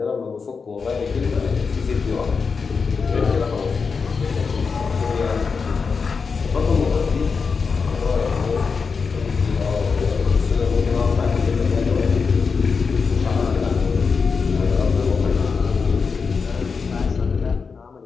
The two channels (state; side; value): quieter; right; 5.2 dB